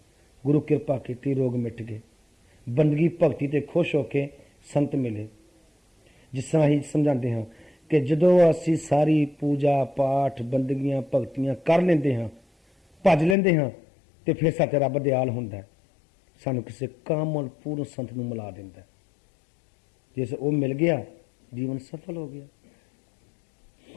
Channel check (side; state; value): right; drops out; at 13.4 s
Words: गुरु कृपा की रोग मिट गए, बंदगी भगती ते खुश होके संत मिले। जिस तरह ही समझाते हैं कि जदों असी सारी पूजा पाठ बंदगियां भगतियां कर लेंदे हाँ, भज लेंदे हाँ, तो फिर साथे रब दयाल हुंदा है, सानू किसी कामल पूर्ण संत नूं मिला दिंदा है। जैसे वो मिल गया जीवन सफल हो गया।